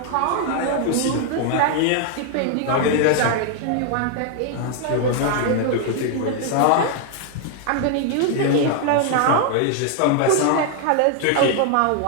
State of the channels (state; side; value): different; both; correlation 0.00